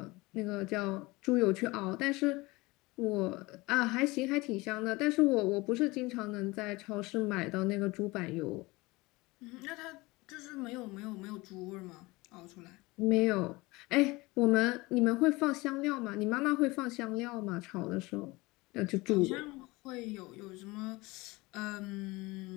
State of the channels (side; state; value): right; quieter; 22.5 dB